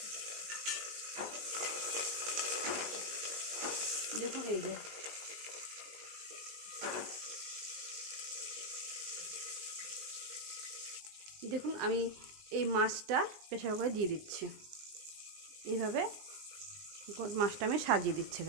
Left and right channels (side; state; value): left; late; 20 ms